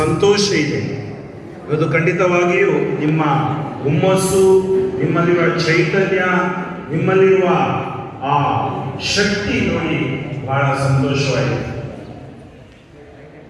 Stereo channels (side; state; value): both; identical; correlation 1.00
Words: ಇದೆ. ಇವತ್ತು ಖಂಡಿತವಾಗಿಯೂ ನಿಮ್ಮ ಹುಮ್ಮಸ್ಸು, ನಿಮ್ಮಲ್ಲಿರುವ ಚೈತನ್ಯ, ನಿಮ್ಮಲ್ಲಿರುವ ಆ ಶಕ್ತಿ ನೋಡಿ ಬಹಳ ಸಂತೋಷವಾಗಿದೆ.